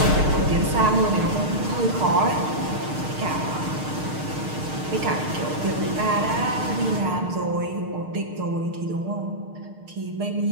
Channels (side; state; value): left; late; 6.5 ms